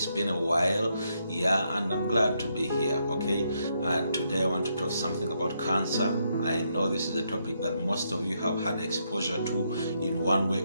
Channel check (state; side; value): inverted; both; correlation -0.78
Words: been a while, and I'm glad to be here, okay? And today I want to talk something about cancer. I know this is a topic that most of you have had exposure to in one way